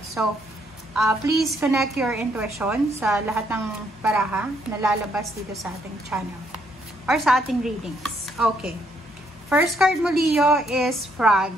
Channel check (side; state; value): both; normal; correlation 0.72